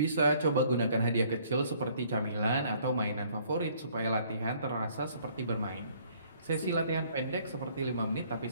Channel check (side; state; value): both; inverted; correlation -0.61